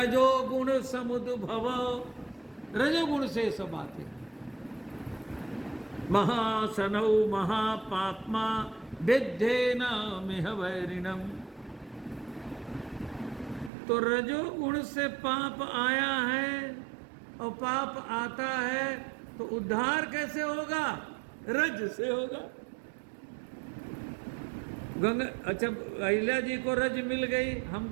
समुद्भव, रजोगुण से सब आते हैं। महासनौ महापाप्मा विद्धेन मिह वैरिणम। तो रजोगुण से पाप आया है, और पाप आता है तो उद्धार कैसे होगा? रज से होगा। गंगा, अच्छा अहिल्या जी को रज मिल गई,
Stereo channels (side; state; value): left; drops out; at 13.7 s